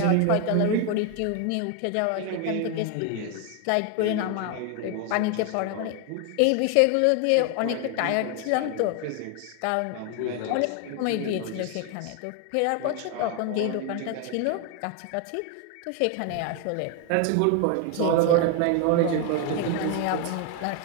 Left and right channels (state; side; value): different; both; correlation 0.01